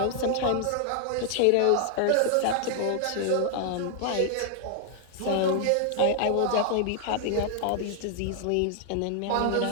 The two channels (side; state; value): both; different; correlation 0.00